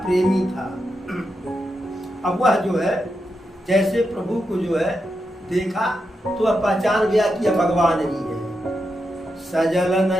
प्रेमी था। अब वह जो है जैसे प्रभु को जो है देखा तो वह पहचान गया कि यह भगवान ही है। सजल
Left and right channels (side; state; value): both; normal; correlation 0.86